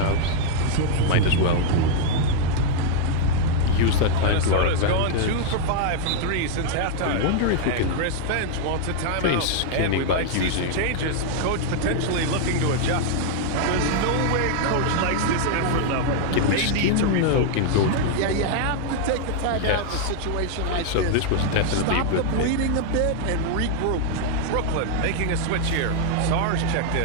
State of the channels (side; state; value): both; different; correlation 0.00